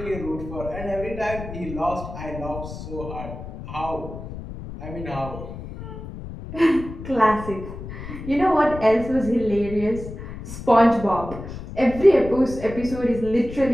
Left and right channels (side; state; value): left; noise; rumble, 11 dB below the sound